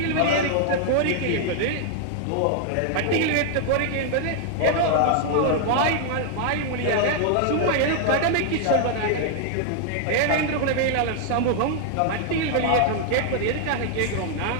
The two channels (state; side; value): different; both; correlation 0.00